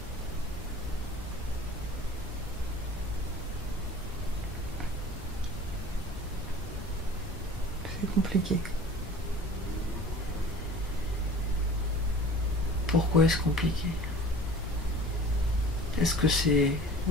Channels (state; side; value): normal; both; correlation 0.43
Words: C'est compliqué. Pourquoi est-ce compliqué? Est-ce que c'est